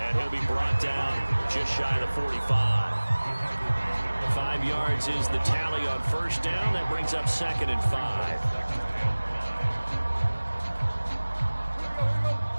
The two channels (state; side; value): inverted; both; correlation -1.00